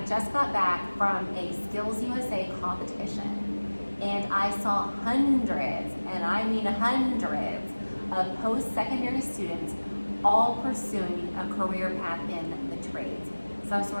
just got back from a Skills USA competition and I saw hundreds, and I mean hundreds, of post-secondary students all pursuing a career path in the trades, some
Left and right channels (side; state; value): both; inverted; correlation -1.00